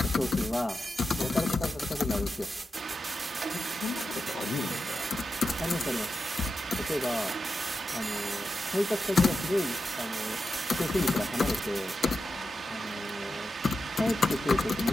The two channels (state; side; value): normal; both; correlation 0.89